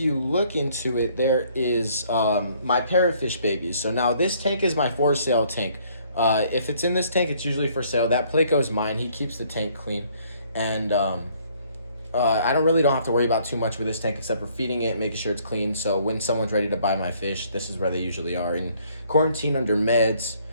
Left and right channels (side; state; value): both; inverted; correlation -0.63